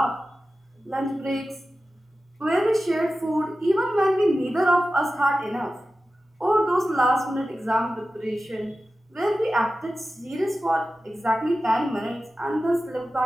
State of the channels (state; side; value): normal; both; correlation 0.94